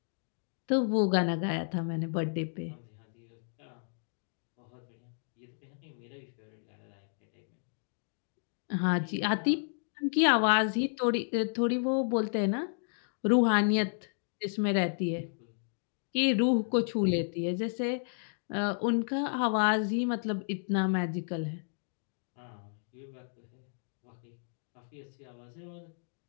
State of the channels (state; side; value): silent; right; digital silence